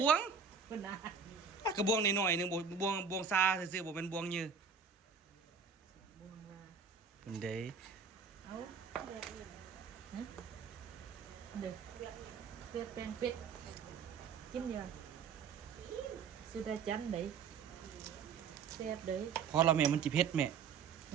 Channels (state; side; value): quieter; left; 6.0 dB